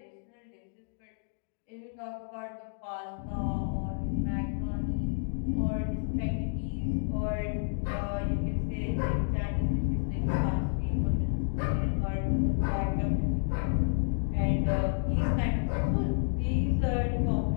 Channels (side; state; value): right; silent; digital silence